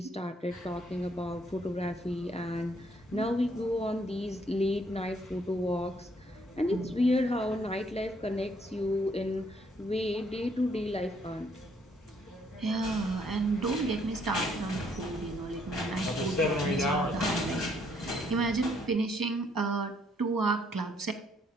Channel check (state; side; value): normal; both; correlation 0.68